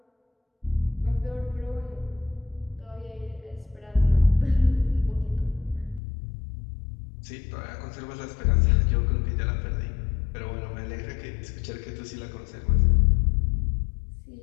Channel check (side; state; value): right; drops out; at 6.0 s